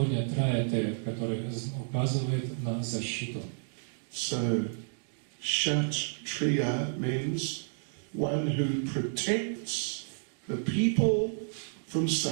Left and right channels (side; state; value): left; silent; digital silence